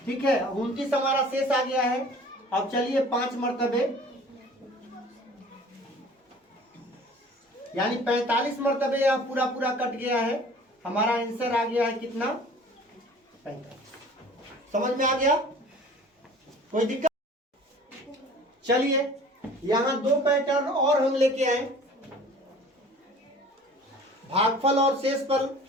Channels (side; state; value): both; normal; correlation 0.47